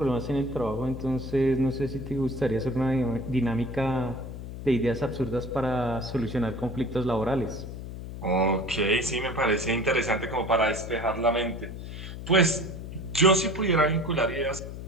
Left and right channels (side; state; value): left; noise; hum, 9 dB below the sound